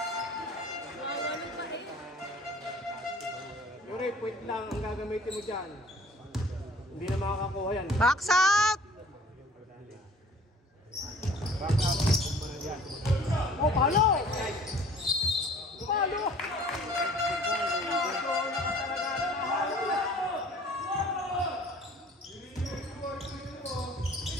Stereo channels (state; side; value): normal; both; correlation 0.51